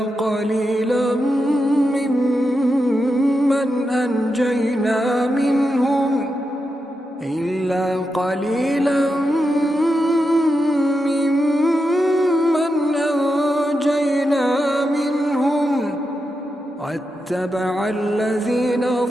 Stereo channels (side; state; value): both; normal; correlation 0.87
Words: قليلا ممن أنجينا منهم واتبع الذين